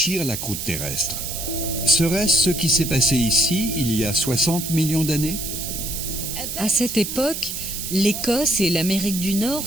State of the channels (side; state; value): right; noise; hiss, 5 dB below the sound